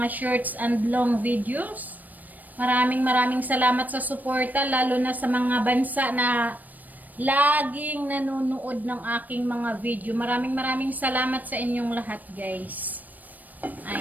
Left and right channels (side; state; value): left; late; 0.083 ms